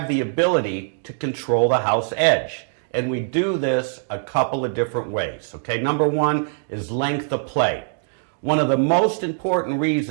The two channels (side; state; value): left; silent; digital silence